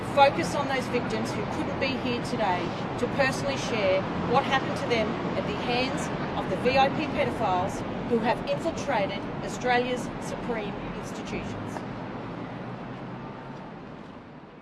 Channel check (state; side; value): identical; both; correlation 1.00